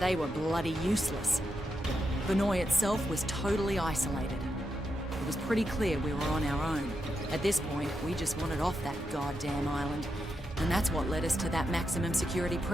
were bloody useless. Banoi itself was totally isolated. It was pretty clear we were on our own. At this point, we just wanted off that goddamn island. And that's what led us to that maximum security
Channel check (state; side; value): normal; both; correlation 0.85